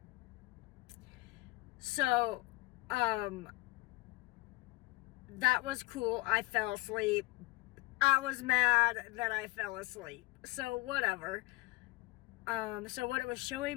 So, that was cool. I fell asleep. I was mad that I fell asleep. So whatever. So what it was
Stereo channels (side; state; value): right; quieter; 21.9 dB